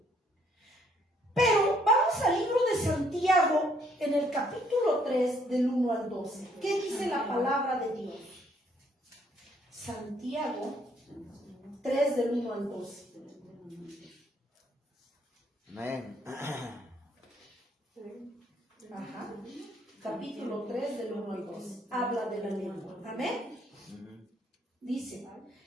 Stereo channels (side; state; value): both; normal; correlation 0.67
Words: Pero vamos al libro de Santiago, en el capítulo 3, del 1 al 12. ¿Qué dice la palabra de Dios? Santiago 3, del 1 al 12. Amén. Ajá. Capítulo 3 del 1 al 12. Habla de la lengua. Amén. Dice,